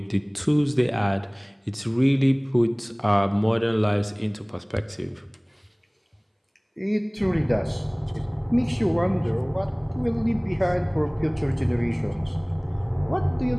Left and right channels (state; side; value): identical; both; correlation 1.00